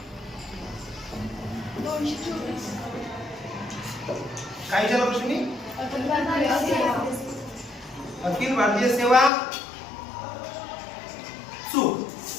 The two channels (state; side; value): drops out; right; at 9.3 s